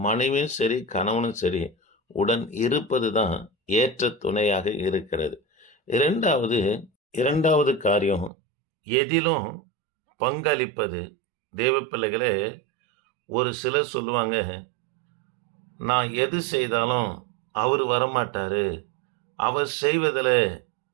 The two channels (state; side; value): drops out; left; at 8.3 s